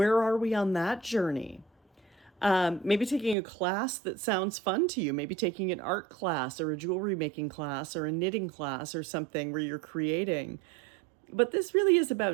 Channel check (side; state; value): left; drops out; at 3.4 s